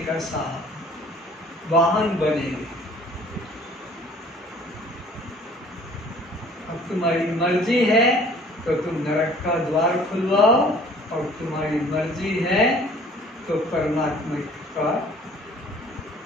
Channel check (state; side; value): normal; both; correlation 0.53